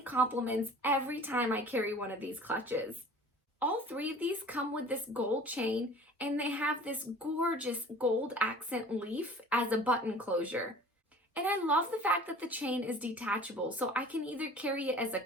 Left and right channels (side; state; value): both; normal; correlation 0.45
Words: every time I carry one of these clutches. All three of these come with this gold chain, and they have this gorgeous gold accent leaf as a button closure. And I love the fact that the chain is detachable, so I can either carry it as a